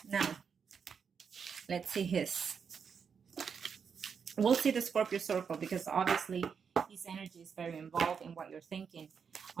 now let's see his. We'll see the Scorpio circle because obviously his energy is very involved in what you're thinking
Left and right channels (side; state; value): left; quieter; 6.5 dB